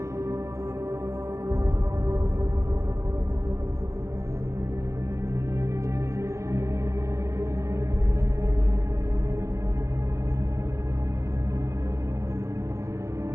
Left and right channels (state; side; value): late; left; 0.14 ms